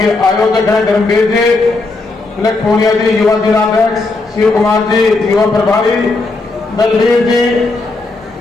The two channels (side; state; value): right; quieter; 3.4 dB